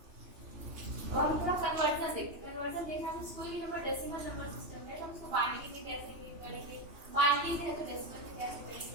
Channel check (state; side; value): late; left; 2.8 ms